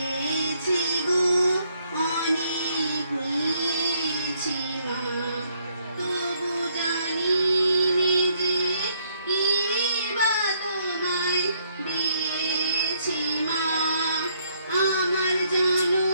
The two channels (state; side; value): inverted; both; correlation -0.70